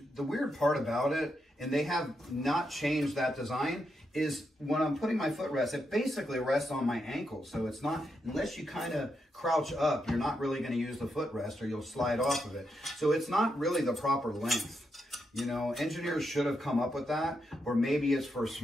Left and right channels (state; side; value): normal; both; correlation 0.83